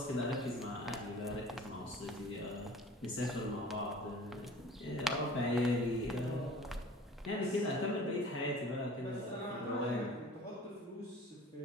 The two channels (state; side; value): normal; both; correlation 0.45